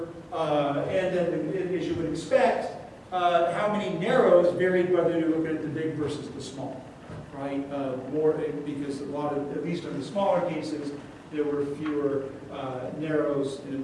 and then, as you would expect, how many narrows varied whether you're looking at the big versus the small, right? More because a lot of, at least in the smaller cases, there were fewer narrows, and in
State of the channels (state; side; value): identical; both; correlation 1.00